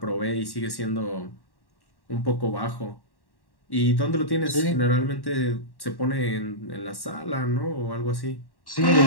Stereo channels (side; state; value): right; late; 1.1 ms